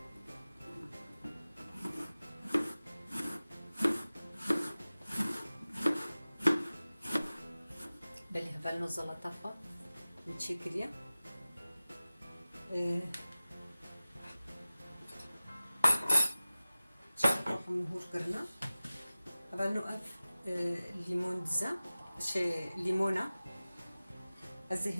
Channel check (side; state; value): both; inverted; correlation -0.96